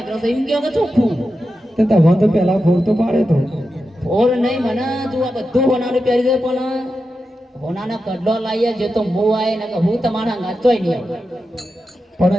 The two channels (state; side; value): normal; both; correlation 0.90